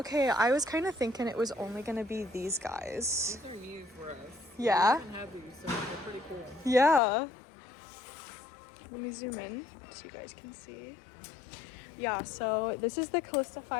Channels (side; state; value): right; drops out; at 7.0 s